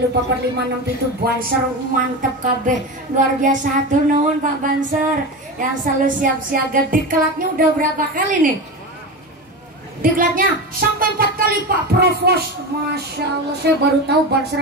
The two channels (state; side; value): normal; both; correlation 0.23